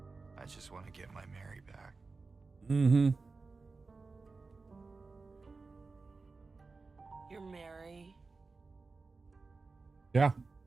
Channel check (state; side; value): quieter; left; 4.0 dB